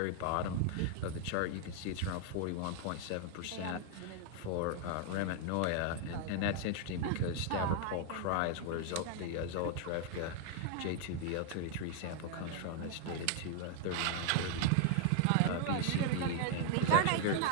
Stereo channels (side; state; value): both; different; correlation 0.00